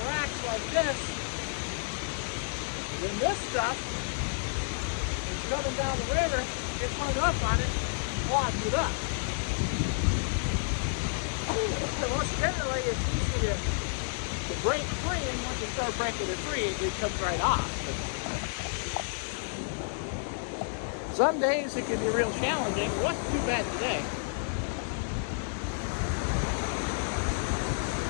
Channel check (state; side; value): silent; right; digital silence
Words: relax like this. When this stuff is coming down the river, get hung up on it, clogs it up. Most generally, it's easy to break free, and once you start breaking it free, it comes right off. But some days it can be real challenging. It wasn't too bad today.